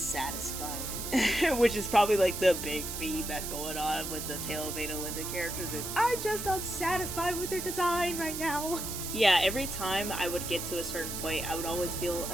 Which is probably like the big theme that's going on with the Tale of Adalinda characters is I'm just unsatisfied with their design right now. Yeah, every time I would get to a certain point, I would always feel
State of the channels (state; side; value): noise; right; hiss, 6 dB below the sound